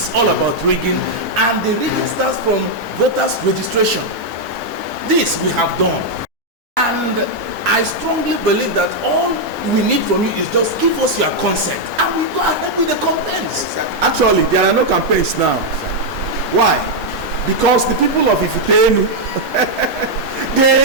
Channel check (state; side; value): normal; both; correlation -0.01